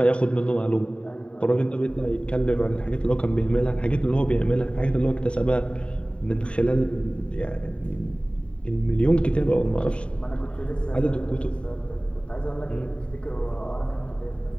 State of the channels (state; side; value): late; right; 0.057 ms